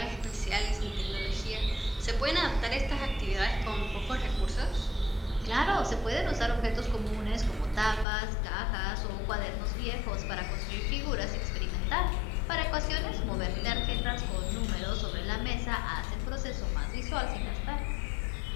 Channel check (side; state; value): right; drops out; at 8.1 s